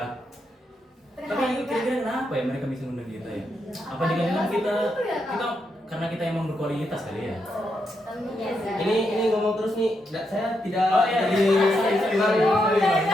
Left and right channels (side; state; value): both; normal; correlation 0.82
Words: Tapi kira-kira kenapa ya mereka bisa ngundang kita ya? Apa dengan kita karena kita emang berkualitas kali ya? Biasa. Ini ngomong terus nih, saya tidak Oh, iya. jadi